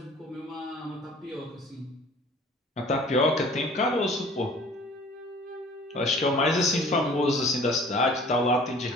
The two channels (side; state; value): both; normal; correlation 0.49